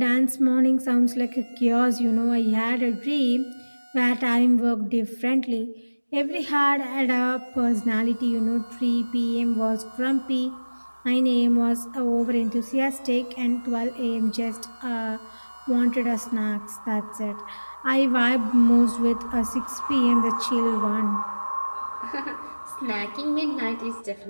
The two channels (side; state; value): both; inverted; correlation -1.00